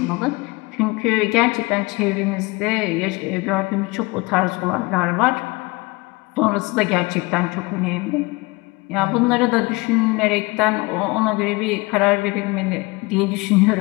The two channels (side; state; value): right; quieter; 24.4 dB